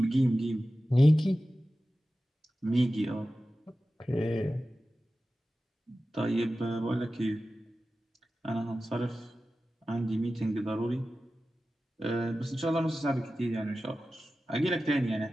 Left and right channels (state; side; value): normal; both; correlation 0.94